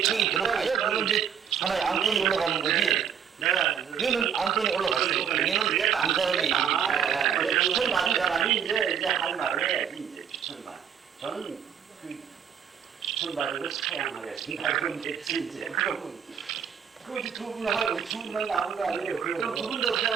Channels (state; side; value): quieter; left; 8.2 dB